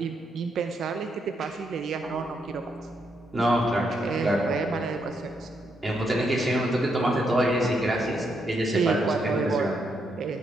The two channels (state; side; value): normal; both; correlation 0.78